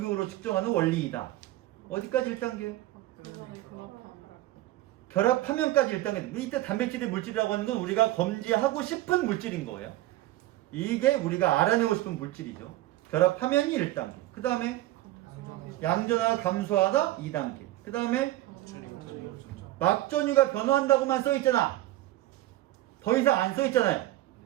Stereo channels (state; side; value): quieter; left; 16.2 dB